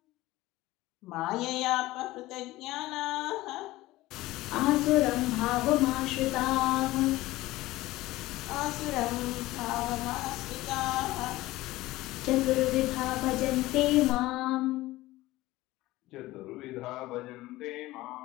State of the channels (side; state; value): right; quieter; 17.9 dB